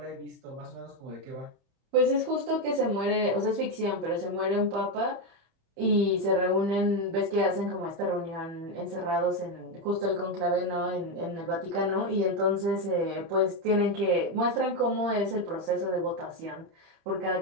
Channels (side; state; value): left; late; 31 ms